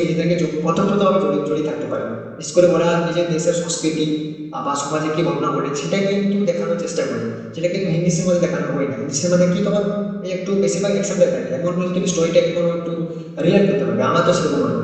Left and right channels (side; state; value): both; identical; correlation 1.00